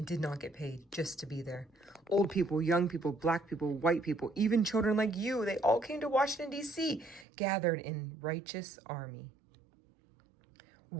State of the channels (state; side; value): drops out; left; at 7.2 s